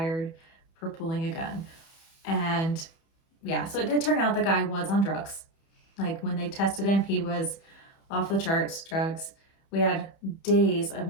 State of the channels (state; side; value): late; right; 31 ms